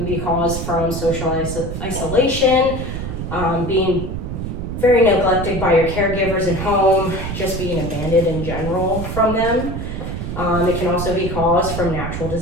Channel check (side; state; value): right; noise; rumble, 5 dB below the sound